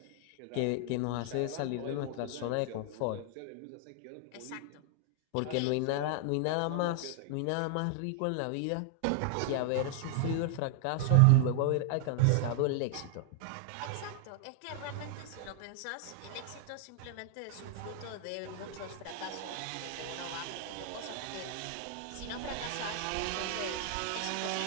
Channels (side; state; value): both; different; correlation 0.00